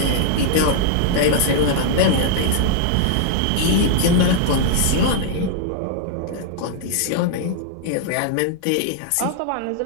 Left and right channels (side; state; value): both; different; correlation -0.01